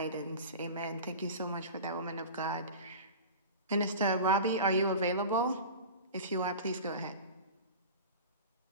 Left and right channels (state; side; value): inverted; both; correlation -0.33